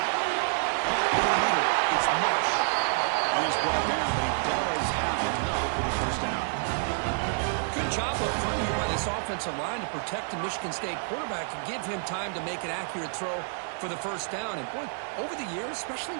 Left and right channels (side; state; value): left; silent; digital silence